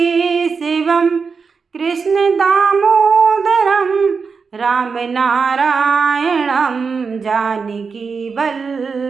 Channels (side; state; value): left; quieter; 5.2 dB